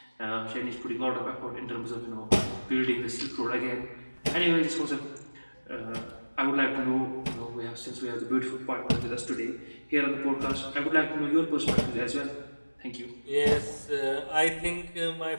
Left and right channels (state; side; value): inverted; both; correlation -1.00